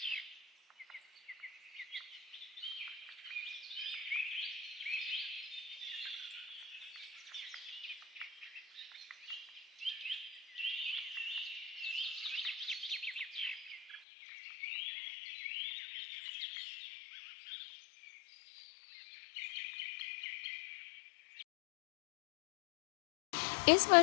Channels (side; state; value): right; drops out; at 14.0 s